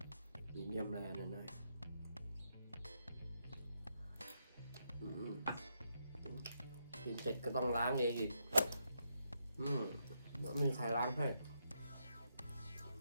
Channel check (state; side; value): inverted; both; correlation -0.80